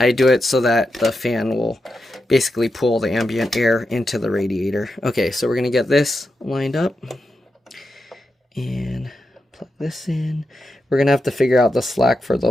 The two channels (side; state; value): both; normal; correlation 0.87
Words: do it so that the fan will basically pull the ambient air into the radiator. Okay, so we're going to get this lined up and plug this in. We're going to have to figure out the slack for